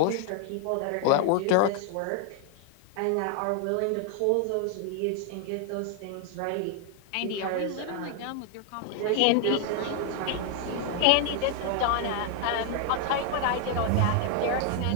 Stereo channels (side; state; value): both; different; correlation 0.00